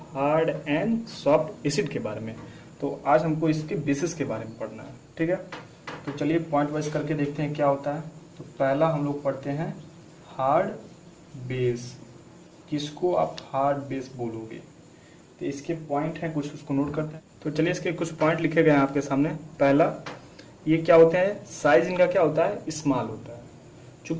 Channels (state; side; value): identical; both; correlation 1.00